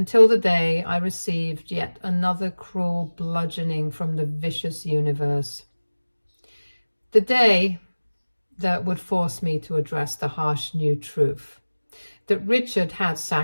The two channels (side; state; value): both; inverted; correlation -1.00